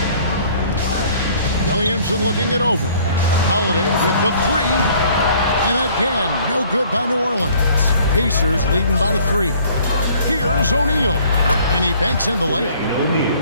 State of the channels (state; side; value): inverted; both; correlation -0.56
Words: Williamson looking it over. Holiday with the three. And again, no good by New Orleans. Pacers leading by 3. Here's O'Neal. And he banks in the layup.